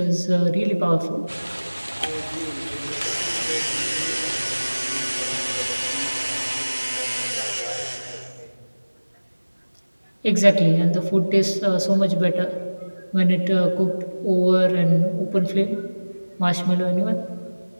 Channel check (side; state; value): both; inverted; correlation -1.00